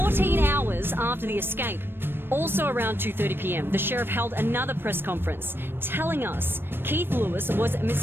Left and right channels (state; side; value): late; left; 0.10 ms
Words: hours after the escape. Also around 2:30 p.m., the sheriff held another press conference, telling us Keith Lewis was